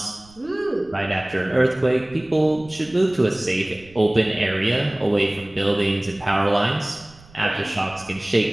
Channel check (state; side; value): noise; right; rumble, 24 dB below the sound